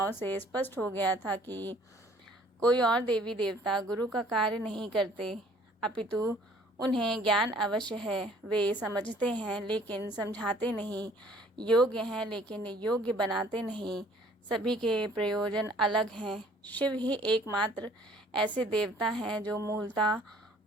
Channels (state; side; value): normal; both; correlation 0.56